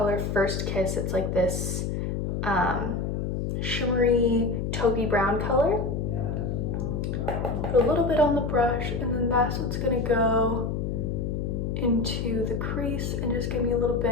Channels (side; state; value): left; noise; hum, 1 dB below the sound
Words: First Kiss. It's like this shimmery taupey brown color. Put a little bit on the brush, and then that's what's gonna go into the crease and just give me a little